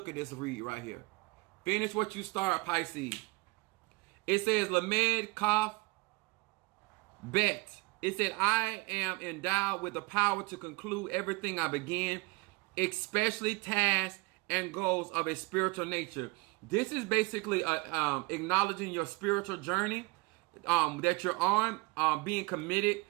at this read right here. Finish what you start, Pisces. It says, Lamed Kaf Bet. It said, I am endowed with the power to conclude everything I begin, especially tasks and goals of a spiritual nature. This is basically acknowledging your spiritual journey that you're on, being committed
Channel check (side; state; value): left; quieter; 25.5 dB